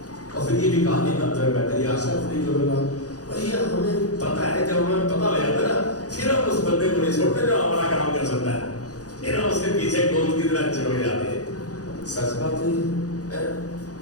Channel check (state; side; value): late; right; 0.67 ms